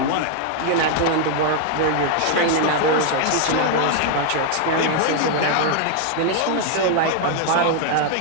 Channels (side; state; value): both; different; correlation 0.00